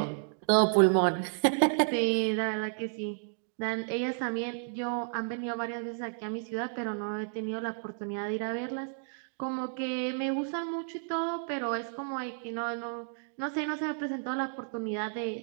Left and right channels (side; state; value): left; silent; digital silence